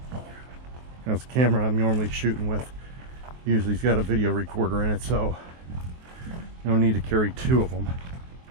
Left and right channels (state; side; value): late; left; 23 ms